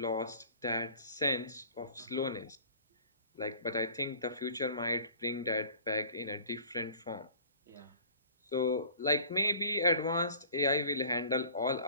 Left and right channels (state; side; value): inverted; both; correlation -0.47